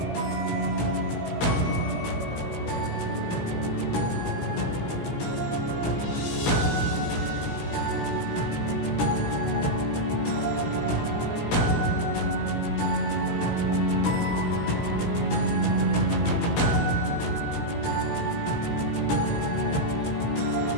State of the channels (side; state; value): right; late; 17 ms